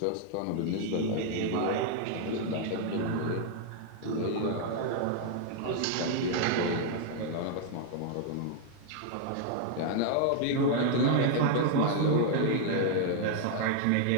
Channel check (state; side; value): different; both; correlation 0.00